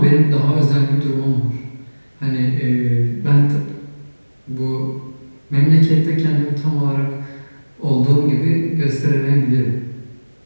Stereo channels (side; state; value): both; inverted; correlation -1.00